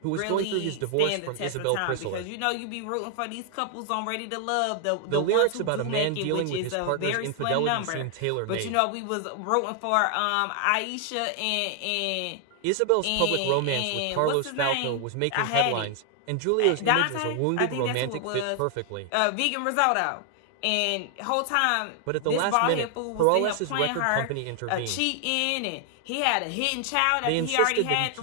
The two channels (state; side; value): different; both; correlation 0.00